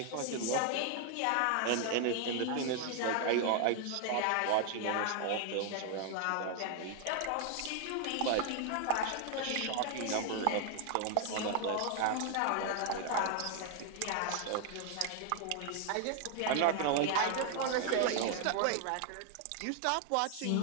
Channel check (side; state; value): both; different; correlation 0.00